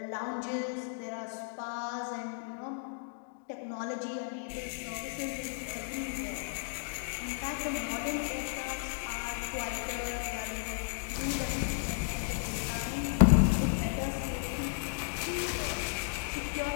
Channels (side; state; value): right; silent; digital silence